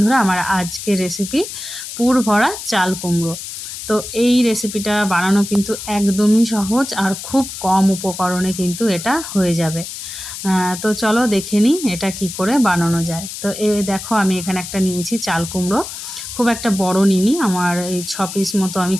আমার আজকের রেসিপি পুর ভরা চাল কুমড়ো। তো এই রেসিপিটা বানানো কিন্তু একদমই সহজ আর খুব কম উপকরণে কিন্তু এটা হয়ে যাবে। তো চলো দেখে নিই এটা কি করে বানানো যায়। তো দেখো আমি এখানে একটা নিয়েছি চাল কুমড়ো, খুব একটা বড় নিইনি, আমার এই 6 পিস মতো আমি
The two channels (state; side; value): noise; left; hiss, 9 dB below the sound